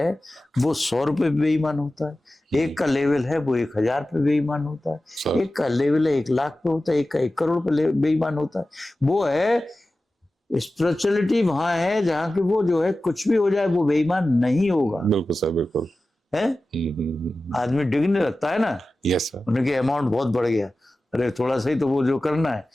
वो 100 रुपए पे बेईमान होता है, एक का लेवल है वो 1000 पे बेईमान होता है, एक का लेवल है 1 लाख पे होता है, एक का 1 करोड़ पे बेईमान होता है। वो है स्पिरिचुअलिटी, वहां है जहां कि वो जो है कुछ भी हो जाए वो बेईमान नहीं होगा। बिल्कुल सर, बिल्कुल है। आदमी डिगने लगता है ना। Yes sir. उनके अमाउंट बहुत बढ़ गया, अरे थोड़ा सा ही तो वो जो करना है,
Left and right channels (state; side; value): normal; both; correlation 0.95